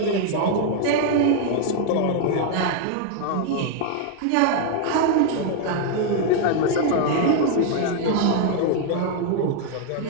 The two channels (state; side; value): different; both; correlation 0.00